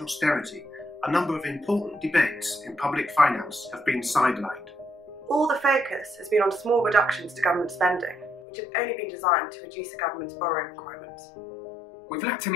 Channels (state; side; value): drops out; right; at 8.5 s